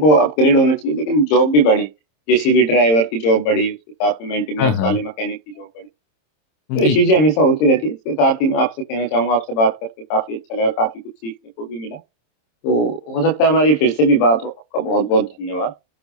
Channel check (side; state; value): right; late; 26 ms